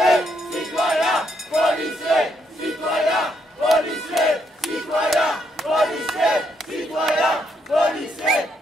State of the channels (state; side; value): normal; both; correlation 0.75